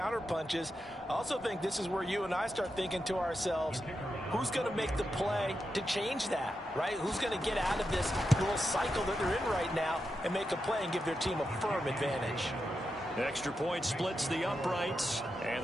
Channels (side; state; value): both; normal; correlation 0.87